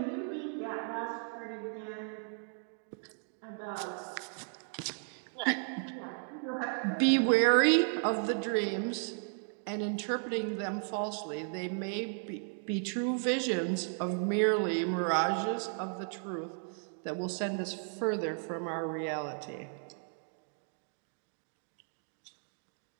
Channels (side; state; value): left; silent; 55 dB below the other